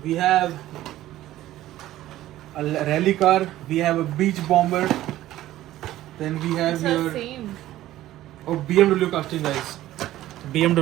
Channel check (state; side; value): quieter; left; 14.6 dB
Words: We have a rally car. We have a beach bomber. Then we have this is. It's here the same. oh BMW casting, guys.